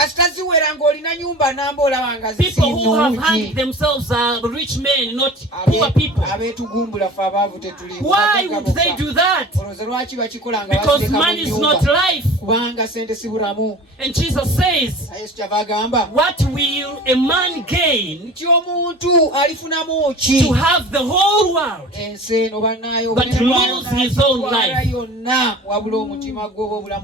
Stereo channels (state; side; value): normal; both; correlation 0.39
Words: ziwera ng'olina nyumba namba olaba nga People who have hanged zisinnungi. themselves are rich men, not poor people. Abeetugumbula ffe abaavu tetuli. Why would they do that? Olowooza lwaki bakikola nga Because basireka mu money is nnyumba? not life. Kubanga sente si bulamu. And Jesus says, Yesu kyava agamba what will a man gain nti omuntu alifunamu ki to have the whole world ensi eno bannaayo but lose his own life? yonna wabula omutima gwe oba